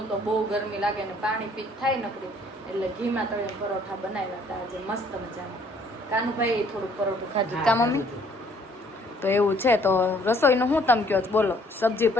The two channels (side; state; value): both; normal; correlation 0.61